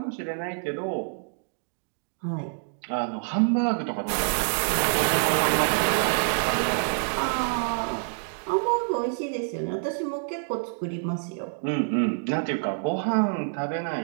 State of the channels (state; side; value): silent; left; digital silence